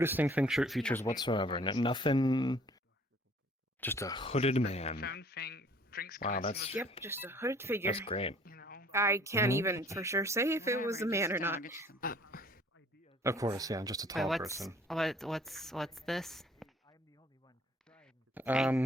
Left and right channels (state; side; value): normal; both; correlation 0.55